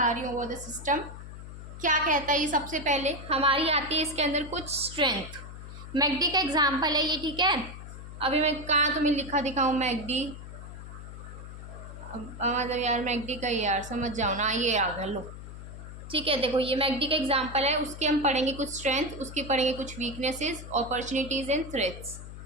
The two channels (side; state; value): left; noise; hum, 12 dB below the sound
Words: रही हूँ वो द सिस्टम क्या कहता है। ये सबसे पहले हमारी आती है इसके अंदर कुछ स्ट्रेंथ। मैकडी का एग्जांपल है ये, ठीक है। अभी मैं कहाँ तुम्हें लिखा दिखाऊँ मैकडी, मतलब यार मैकडी का यार समझ जाओ ना, ये आ गया लो। ठीक है, देखो ये मैकडी का एग्जांपल है, उसके हम पढ़ेंगे कुछ स्ट्रेंथ, उसके पढ़ेंगे कुछ weaknesses, opportunities and threats.